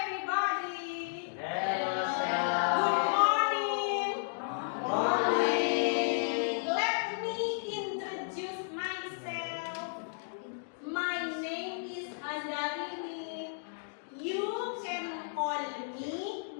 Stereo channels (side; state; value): right; silent; digital silence